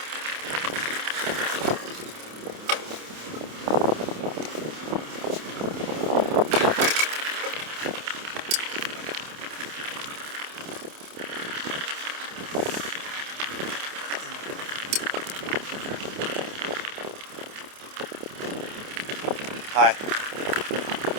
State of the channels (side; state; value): left; late; 28 ms